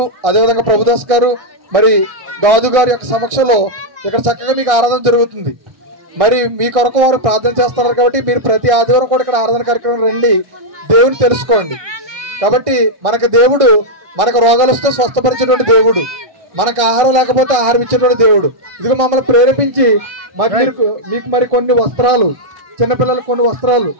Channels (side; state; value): left; late; 1.6 ms